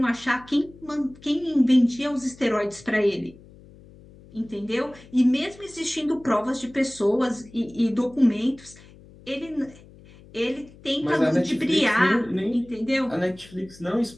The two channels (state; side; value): noise; left; hum, 22 dB below the sound